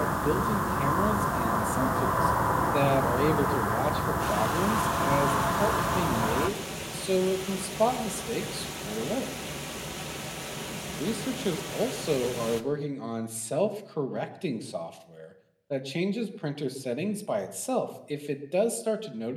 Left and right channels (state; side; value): identical; both; correlation 1.00